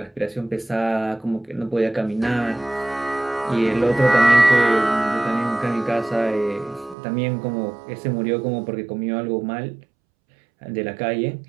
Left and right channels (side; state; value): left; drops out; at 7.0 s